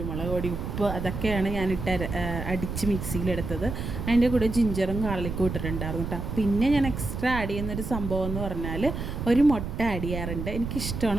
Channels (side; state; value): right; noise; rumble, 5 dB below the sound